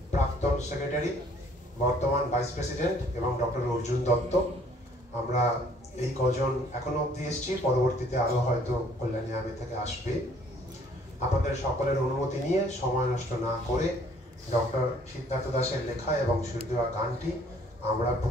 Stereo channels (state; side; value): normal; both; correlation 0.59